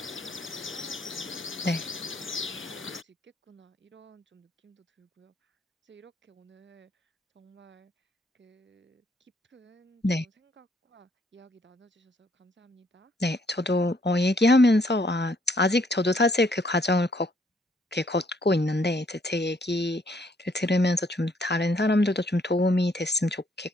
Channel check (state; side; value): normal; both; correlation 0.68